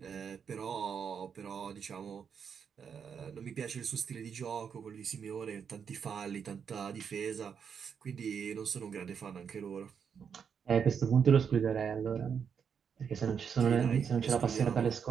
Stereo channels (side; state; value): left; quieter; 7.0 dB